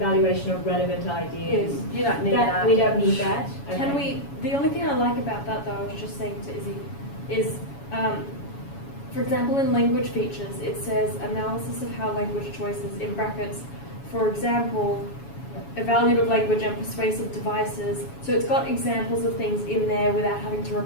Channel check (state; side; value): late; right; 7.1 ms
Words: of relevant Yes, ideas. you don't need that. We don't need that? Can Okay. the only thing I like about that though, I was just saying to Izzy, is, for example, in language features, it says analysis of how language choices, in brackets, for example, evaluative language and persuasive devices. So it's got examples of things in there without having to